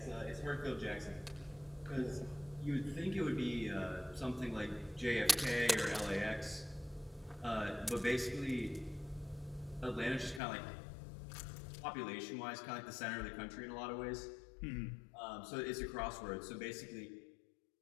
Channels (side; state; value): right; drops out; at 10.4 s